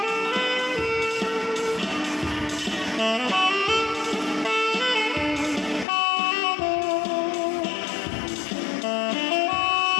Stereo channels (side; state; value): right; drops out; at 5.9 s